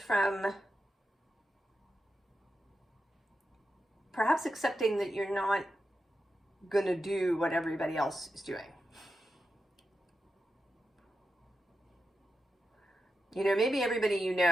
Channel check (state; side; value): normal; both; correlation 0.89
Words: perhaps accepting that you're not going to do what everybody else is doing. Maybe everybody